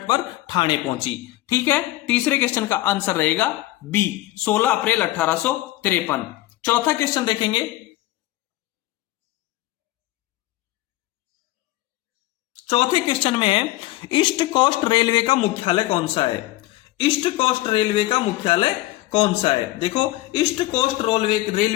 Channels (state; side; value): quieter; right; 17.1 dB